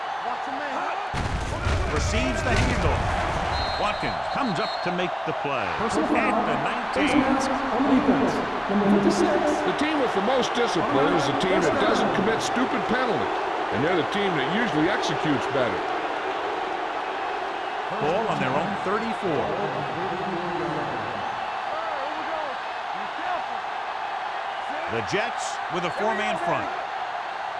Receives the handoff. Watkins comes up to make the play at the 19. The team with the most discipline is the team that doesn't commit stupid penalties, and they're the team that usually executes better. Ball on their own 34. The Jets with a 4-man front.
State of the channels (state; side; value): identical; both; correlation 1.00